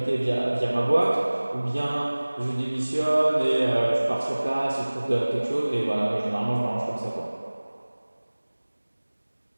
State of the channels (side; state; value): both; inverted; correlation -1.00